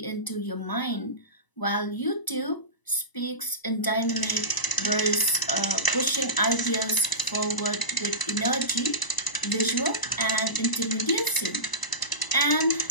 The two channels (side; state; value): right; late; 1.0 ms